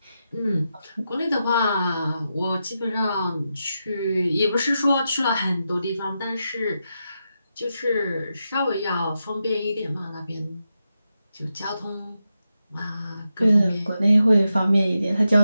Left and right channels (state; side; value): inverted; both; correlation -0.88